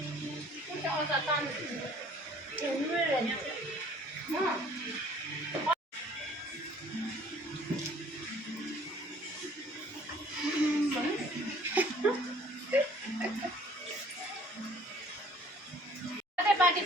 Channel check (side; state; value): both; normal; correlation 0.55